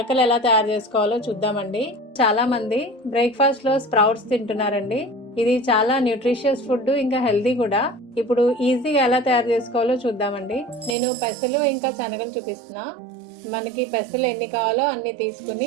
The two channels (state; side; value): drops out; left; at 11.0 s